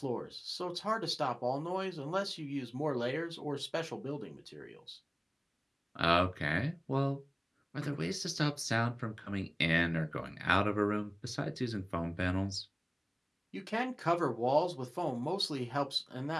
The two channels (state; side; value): identical; both; correlation 1.00